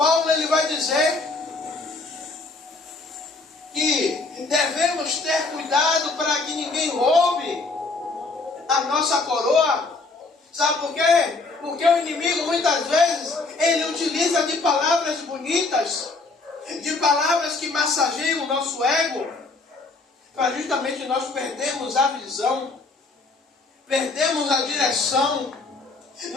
ele vai dizer que devemos ter cuidado para que ninguém roube a nossa coroa. Sabe por quê? Porque o inimigo muitas vezes ele utiliza de palavras bonitas, de palavras que massageiam o nosso ego, para justamente nós perdermos a visão, perdemos a direção,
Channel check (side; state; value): right; quieter; 3.6 dB